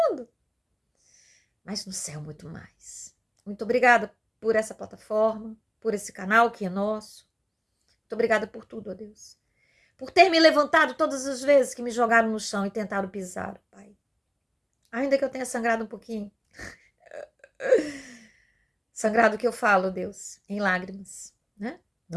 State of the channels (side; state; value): both; identical; correlation 1.00